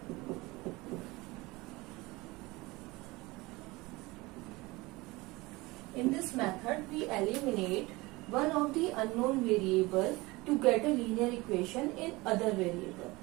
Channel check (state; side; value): quieter; left; 22.2 dB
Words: In this method we eliminate one of the unknown variable to get a linear equation in other variable.